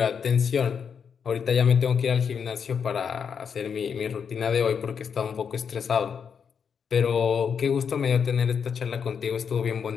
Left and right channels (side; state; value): right; quieter; 6.8 dB